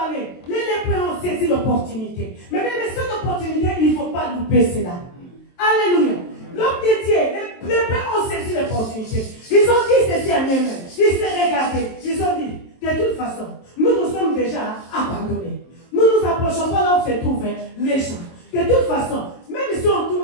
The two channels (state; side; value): late; right; 23 ms